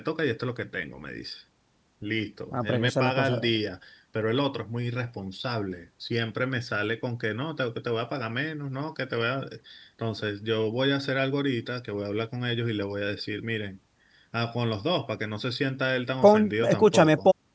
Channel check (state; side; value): identical; both; correlation 1.00